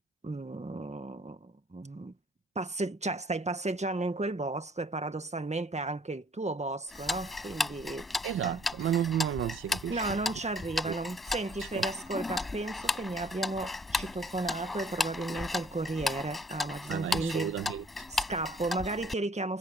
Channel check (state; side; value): normal; both; correlation 0.60